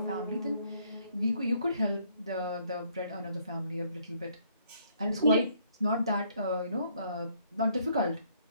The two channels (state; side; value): inverted; both; correlation -0.67